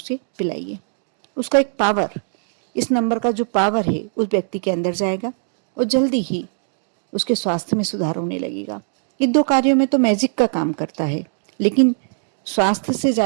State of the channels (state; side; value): silent; left; digital silence